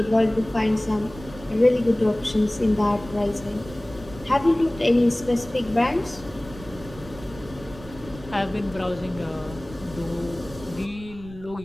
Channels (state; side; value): noise; right; rumble, 17 dB below the sound